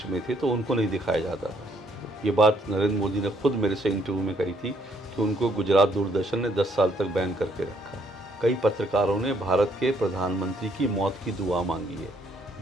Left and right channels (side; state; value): both; normal; correlation 0.69